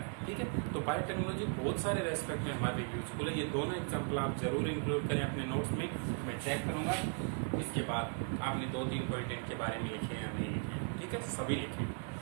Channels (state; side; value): quieter; left; 38.1 dB